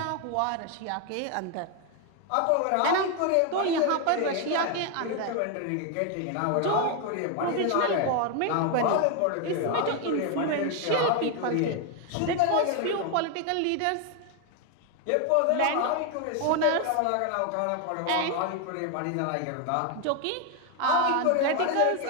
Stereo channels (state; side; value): different; both; correlation 0.01